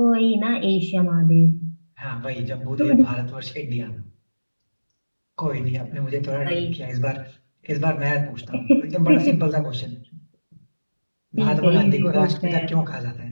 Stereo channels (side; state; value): both; inverted; correlation -1.00